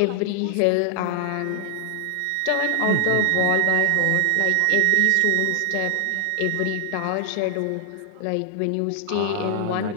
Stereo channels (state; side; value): different; both; correlation 0.00